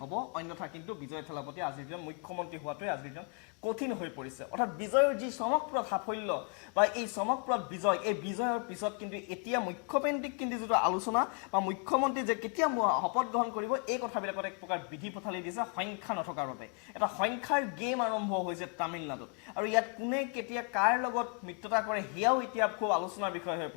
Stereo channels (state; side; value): quieter; right; 35.6 dB